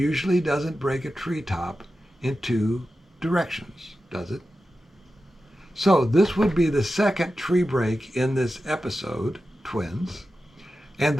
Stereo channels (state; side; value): normal; both; correlation 0.92